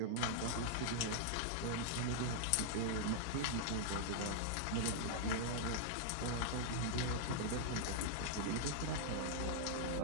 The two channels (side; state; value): both; different; correlation -0.01